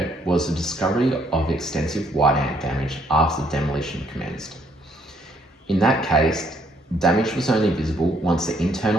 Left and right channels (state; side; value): normal; both; correlation 0.69